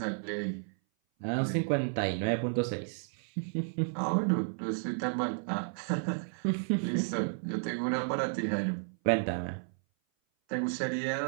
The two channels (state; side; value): silent; left; 56 dB below the other